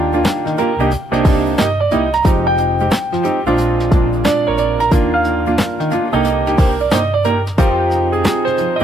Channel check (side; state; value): both; normal; correlation 0.76